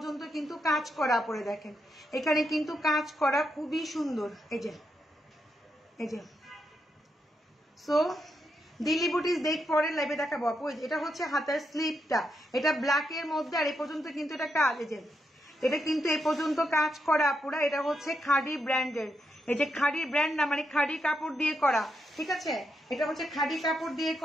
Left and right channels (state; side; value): normal; both; correlation 0.82